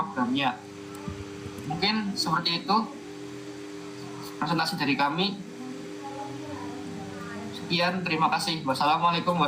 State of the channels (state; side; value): identical; both; correlation 1.00